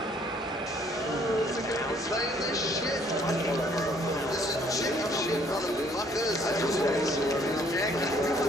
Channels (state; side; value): normal; both; correlation 0.62